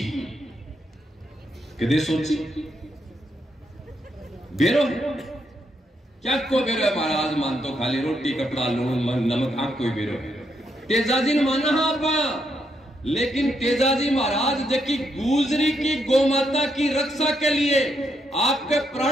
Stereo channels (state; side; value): normal; both; correlation 0.78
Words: कदे सोची बेरो है क्या कोई बेरो है महाराज मान तो खाली रोटी कपड़ा लून नमक आंख कोई बेरो है तेजाजी ने माना आप, लेकिन तेजाजी महाराज जबकि गुजरी की गौ माता की रक्षा के लिए आपके